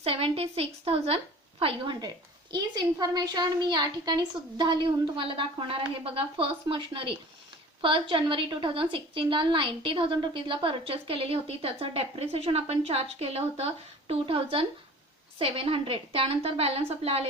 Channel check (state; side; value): normal; both; correlation 0.43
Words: हीच इन्फॉर्मेशन मी या ठिकाणी सुद्धा लिहून तुम्हाला दाखवणार आहे. बघा फर्स्ट मशिनरी 1 जानेवारी 2016ला 90,000 परचेस केलेली होती. त्याचं डेप्रिसिएशन आपण चार्ज केलं होतं 2,700. त्यानंतर बॅलन्स आपला